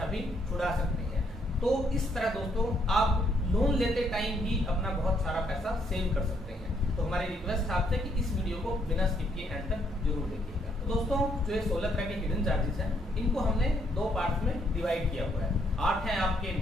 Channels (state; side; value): normal; both; correlation 0.71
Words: भी छुड़ा सकते हैं। तो इस तरह दोस्तों आप लोन लेते टाइम ही अपना बहुत सारा पैसा सेव कर सकते हैं। तो हमारी रिक्वेस्ट आपसे कि इस वीडियो को बिना स्किप किए एंड तक जरूर देखिएगा। तो दोस्तों जो ये 16 तरह के हिडन चार्जेस हैं इनको हमने दो पार्ट्स में डिवाइड किया हुआ है। 8 हैं आपके